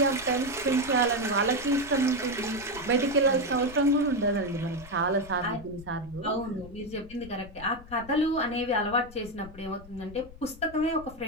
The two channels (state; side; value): noise; left; rumble, 17 dB below the sound